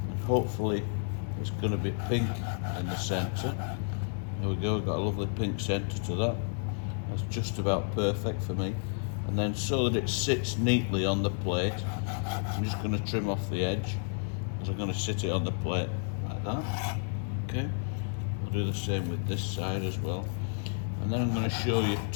and hopefully it's going to be pink in the centre. There we go, we've got a lovely pink centre to that. That's just about perfect for me. And then so that it sits neatly on the plate, I'm just going to trim off the edge, as I'm going to sit it on the plate like that. Okay, I'll do the same with this side as well. And then I'm going to show you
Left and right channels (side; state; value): right; silent; 57 dB below the other